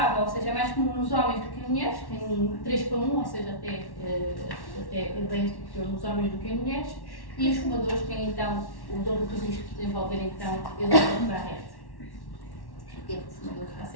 ou seja, é mais comum nos homens do que em mulheres, tem 3 para 1, ou seja, até bem superior nos homens do que em mulheres, e os fumadores têm então o dobro de risco de desenvolver então edema de Barrett. Porque o fumador está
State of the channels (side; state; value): right; late; 1.1 ms